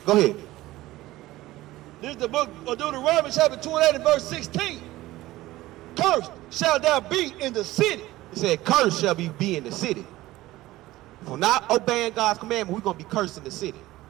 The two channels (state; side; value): quieter; left; 17.1 dB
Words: Go ahead. This is the book of Deuteronomy, chapter 28 and verse 16. Cursed shall thou be in the city. He said, cursed shall be in the city. For not obeying God's commandment, we're going to be cursed in the city.